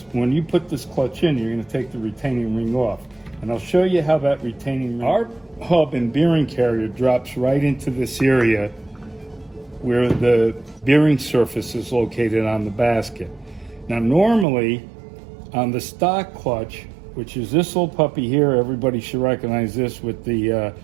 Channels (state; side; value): drops out; left; at 14.5 s